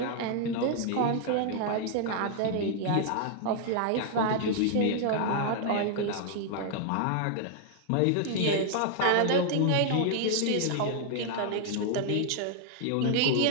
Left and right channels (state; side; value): different; both; correlation 0.00